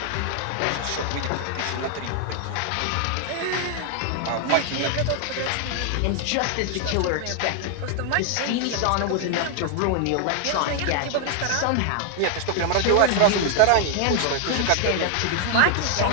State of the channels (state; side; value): different; both; correlation 0.00